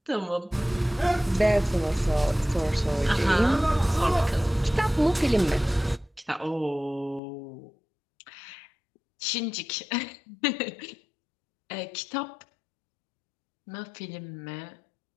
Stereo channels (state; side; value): drops out; right; at 7.2 s